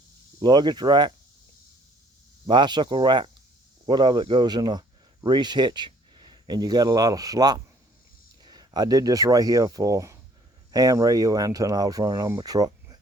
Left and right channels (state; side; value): normal; both; correlation 0.59